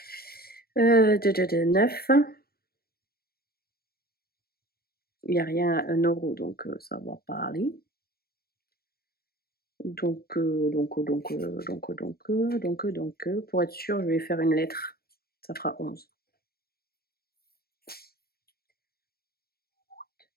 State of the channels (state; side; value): late; right; 0.45 ms